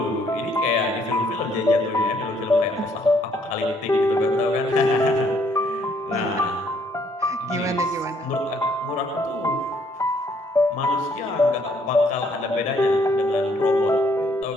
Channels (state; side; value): normal; both; correlation 0.66